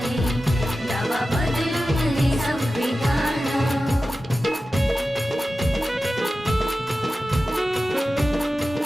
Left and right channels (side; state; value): both; normal; correlation 0.94